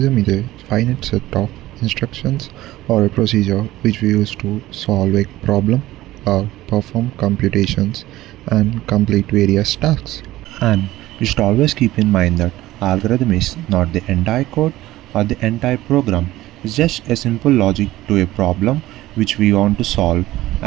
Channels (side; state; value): left; quieter; 16.2 dB